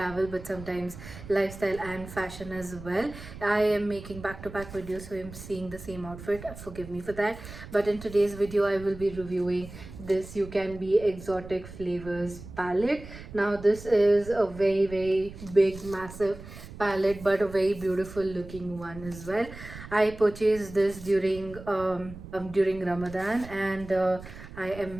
but sometimes lifestyle and fashion as well. I am making back-to-back videos, so I'm seeing the same outfit. Forgive me for that. But in today's video, I will be reviewing this Ucanbe Exotic Flavors Palette. Now this is a very big massive palette, but a very beautiful looking one as well. I purchased this during Ramadan, and I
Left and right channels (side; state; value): right; noise; rumble, 14 dB below the sound